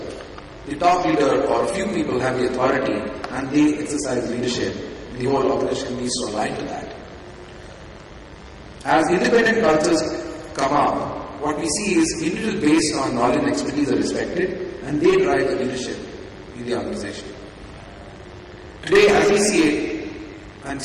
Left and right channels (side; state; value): both; identical; correlation 1.00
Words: the top leader or a few people have the authority and they exercise leadership. The whole organization needs to align to that. As independent cultures come up, what we see is individuals based on knowledge and expertise are respected and they drive the leadership in the organization. Today, as we see it, and